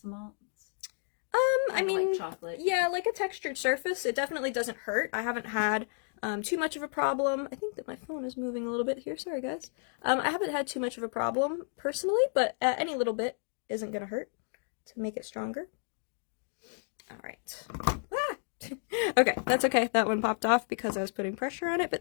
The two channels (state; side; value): silent; right; 57 dB below the other